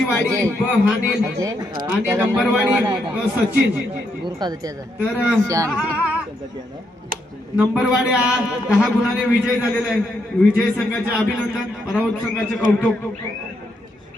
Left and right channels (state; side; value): normal; both; correlation 0.78